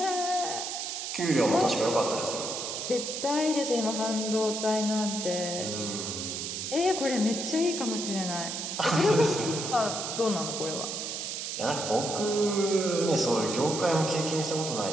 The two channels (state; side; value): noise; right; hiss, 4 dB below the sound